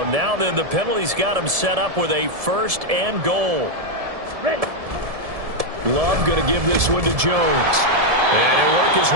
now then the penalty's got him set up with a 1st and goal. Ready. Love going to give this one to Jones. And he'll work his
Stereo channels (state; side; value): late; left; 1.7 ms